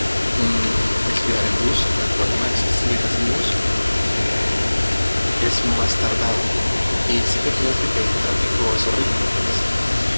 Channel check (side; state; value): both; inverted; correlation -1.00